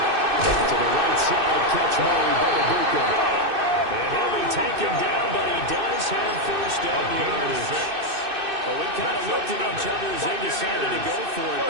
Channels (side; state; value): left; late; 2.6 ms